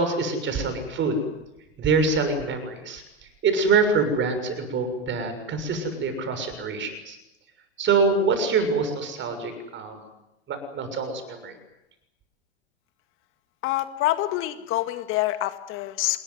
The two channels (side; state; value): both; normal; correlation 0.10